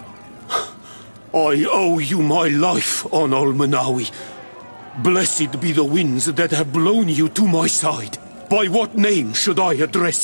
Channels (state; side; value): inverted; both; correlation -1.00